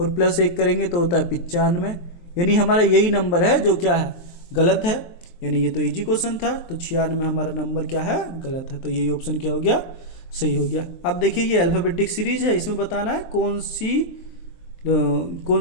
+1 करेंगे तो होता है 95। यानी हमारा यही नंबर है जो क्या है, गलत है। यानी ये तो इजी क्वेश्चन था, तो 96 में हमारा नंबर क्या है, गलत है। तो यही ऑप्शन क्या हो गया, सही हो गया। अब देखिए ये अल्फ़ाबेटिक सीरीज है, इसमें बताना है कौन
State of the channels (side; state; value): right; late; 23 ms